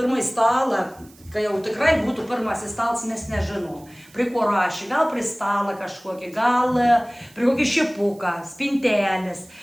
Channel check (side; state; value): right; noise; hiss, 26 dB below the sound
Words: stalą, kai jau tikrai būtų pirmasis stalas, mes nežinom. Prie ko rašė, gal prie stalą kažkokį, gal prie kokį šipuką, spintelės.